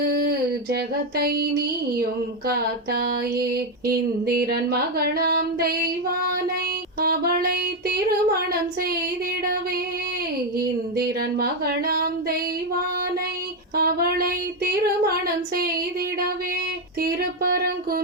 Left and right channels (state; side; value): normal; both; correlation 0.06